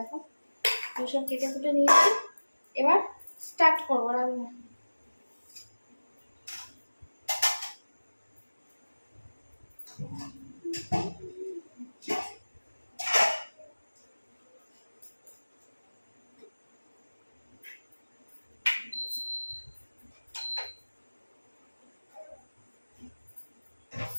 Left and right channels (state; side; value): inverted; both; correlation -1.00